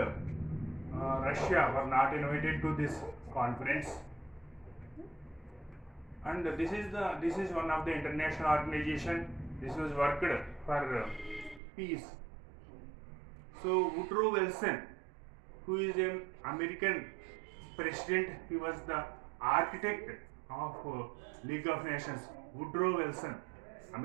Russia were not invited to this conference, and this is one of the international organization. This was worked for peace. So Woodrow Wilson, who is an American president, he was the architect of League of Nations. Woodrow Wilson,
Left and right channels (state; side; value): drops out; left; at 11.6 s